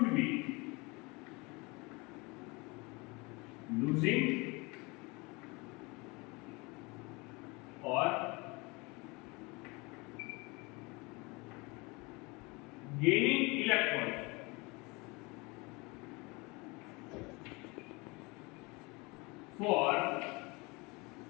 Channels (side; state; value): right; quieter; 26.3 dB